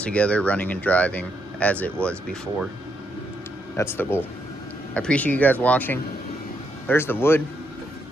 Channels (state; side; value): normal; both; correlation 0.78